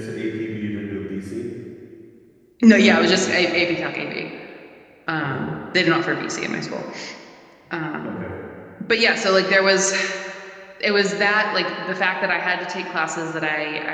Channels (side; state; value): both; identical; correlation 1.00